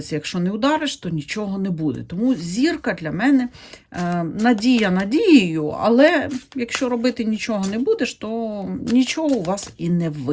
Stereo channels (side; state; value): both; identical; correlation 1.00